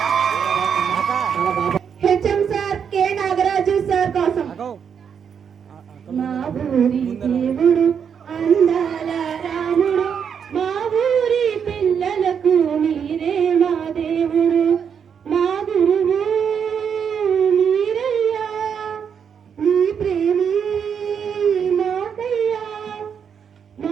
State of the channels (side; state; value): left; quieter; 7.3 dB